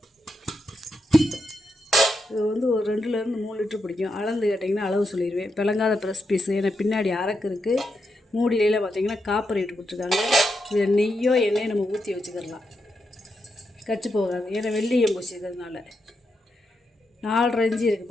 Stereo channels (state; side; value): normal; both; correlation 0.84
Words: இது வந்து ஒரு 2லேருந்து 3 லிட்டர் பிடிக்கும். அளந்து கேட்டிங்கன்னா அளவு சொல்லிடுவேன். பிளங்காத ப்ரெஸ் பீஸு. ஏன்னா பின்னாடி அரக்கு இருக்குது. மூடியில பார்த்தீங்கன்னா காப்பர் இட்டு கொடுத்துருக்காங்க. இது நெய்யோ எண்ணெயோ நம்ம ஊற்றி வச்சுக்கிடலாம், கச்சு போகாது. ஏன்னா வெள்ளியம் பூசிக்கிறதுனால. 4.5 இன்ச்சு